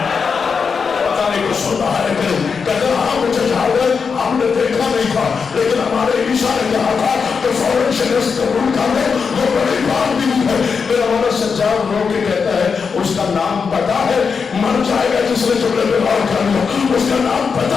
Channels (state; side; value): quieter; right; 5.6 dB